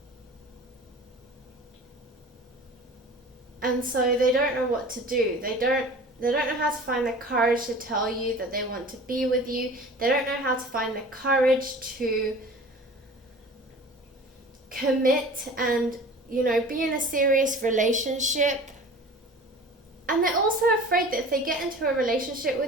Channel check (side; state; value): both; normal; correlation 0.41